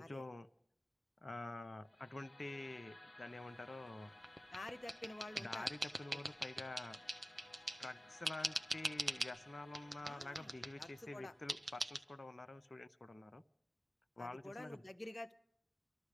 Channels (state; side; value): normal; both; correlation 0.94